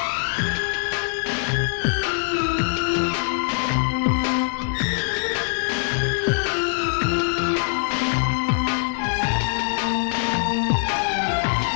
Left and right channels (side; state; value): right; silent; digital silence